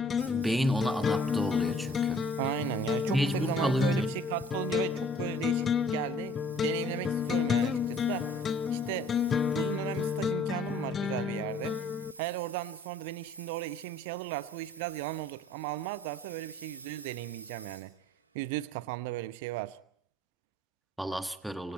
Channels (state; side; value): normal; both; correlation 0.56